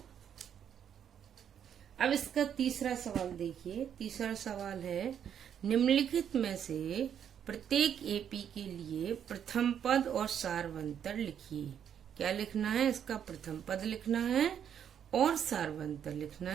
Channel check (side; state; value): left; quieter; 8.8 dB